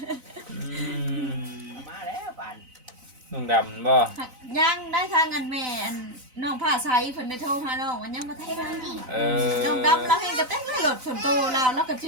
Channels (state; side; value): late; left; 4.0 ms